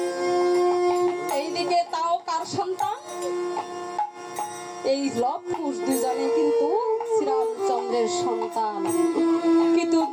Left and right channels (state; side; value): identical; both; correlation 1.00